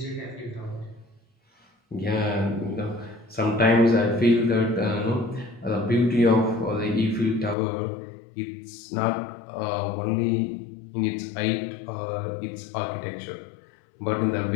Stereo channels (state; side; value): drops out; right; at 7.6 s